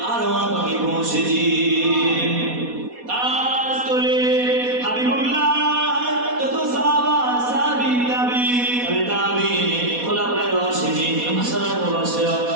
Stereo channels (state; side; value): late; left; 4.1 ms